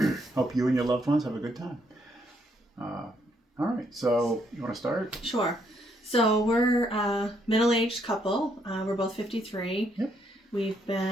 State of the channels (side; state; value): both; normal; correlation 0.73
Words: Hope you and your loved ones have a good time. All right, so you want to start? Sure. So we're a middle-aged couple. We're both 53. Yep. We've